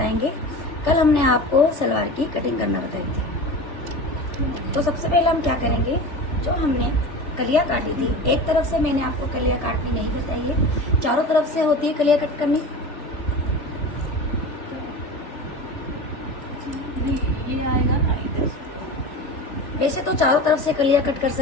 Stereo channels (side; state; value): right; late; 3.4 ms